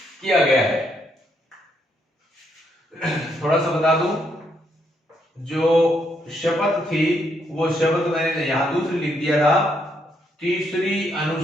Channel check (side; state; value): both; normal; correlation 0.75